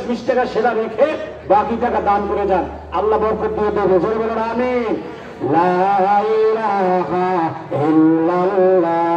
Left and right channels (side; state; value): both; identical; correlation 1.00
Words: টাকা সেটা রেখে বাকি টাকা দান করে যান, আল্লাহ বরকত দিয়ে দেবে। জোরে বলুন আমিন। লা ইলাহা